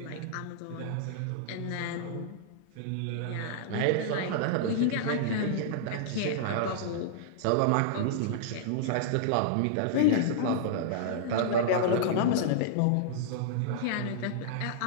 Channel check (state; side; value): different; both; correlation -0.02